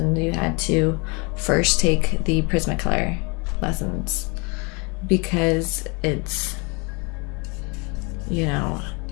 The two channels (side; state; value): right; quieter; 30.6 dB